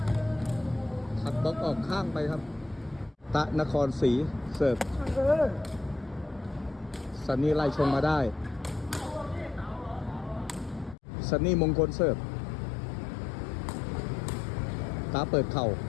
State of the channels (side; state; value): right; drops out; at 11.0 s